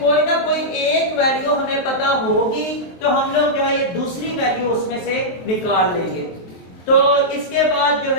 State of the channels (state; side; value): late; right; 23 ms